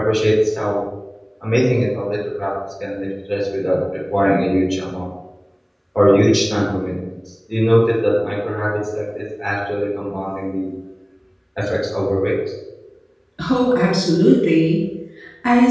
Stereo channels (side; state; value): both; identical; correlation 1.00